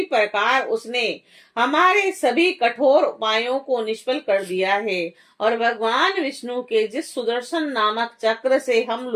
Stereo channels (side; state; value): both; identical; correlation 1.00